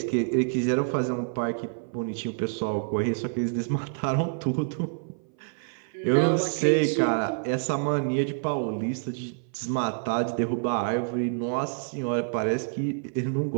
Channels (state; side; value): silent; left; 58 dB below the other